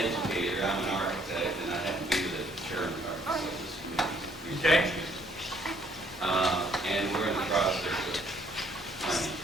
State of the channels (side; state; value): both; normal; correlation 0.65